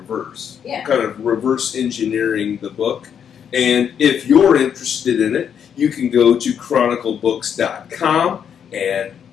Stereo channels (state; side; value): quieter; right; 8.1 dB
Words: Yeah. Kind of reverse engineering the book. And if you're interested in it, you can go to chroniclebooks.com and